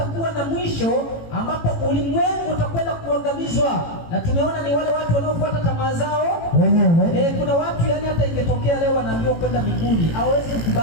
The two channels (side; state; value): right; late; 18 ms